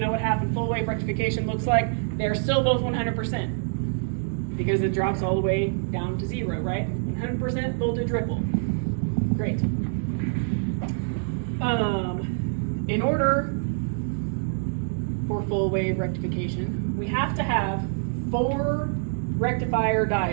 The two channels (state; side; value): silent; left; digital silence